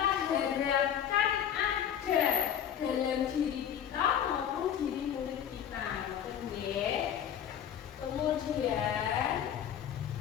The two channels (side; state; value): right; quieter; 9.3 dB